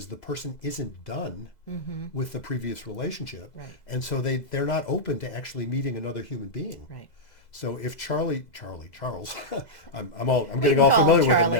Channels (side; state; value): right; late; 2.0 ms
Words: the person isn't done with the previous relationship. Right. And so they're not open to actually meeting another human being. Right. So if Charles, I'm getting can all call familiar him with him Charlie.